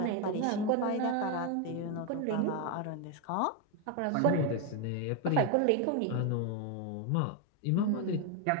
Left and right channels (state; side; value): different; both; correlation 0.01